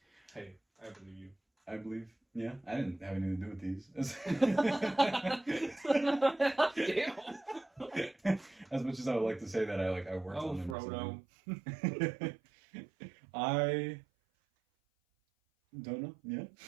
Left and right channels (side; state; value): left; drops out; at 10.8 s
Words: hey, I believe you. I believe. Yeah, I didn't have anything to do with these. As much as I would like to say that I worked on them. Oh, Frodo. I don't know. Yeah.